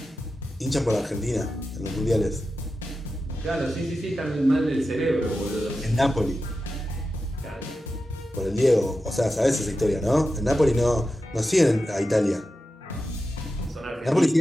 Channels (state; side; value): normal; both; correlation 0.91